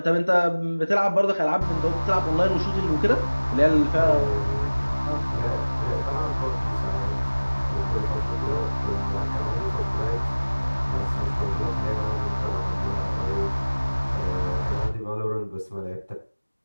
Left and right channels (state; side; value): inverted; both; correlation -1.00